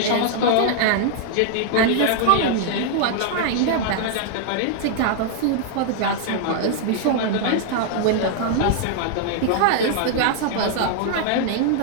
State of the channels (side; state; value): both; different; correlation -0.01